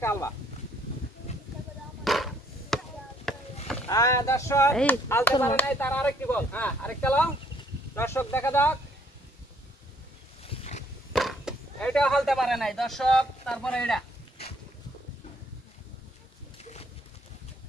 হালবা। হ্যাঁ দর্শক, হালতে পারে নাই, তার আরেকটি বল। হ্যাঁ, আরেকটা লাও দর্শক, দেখা যাক। এটা হালতে পারে নাই দর্শক, তারপরে এটা।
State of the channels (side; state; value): both; normal; correlation 0.65